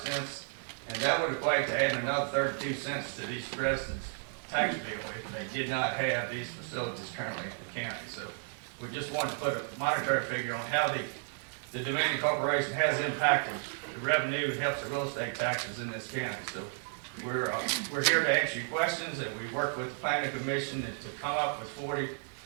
cents, and that would equate to adding another 32 cents to these residents' tax bill if they did not have these facilities currently in the county. So we just wanted to put a monetary figure on how the Dominion Corporation has impacted the revenue and helps the real estate taxes in this county. So we're here to answer your questions, and we work with the Planning Commission to come up with 40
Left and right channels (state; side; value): silent; left; 56 dB below the other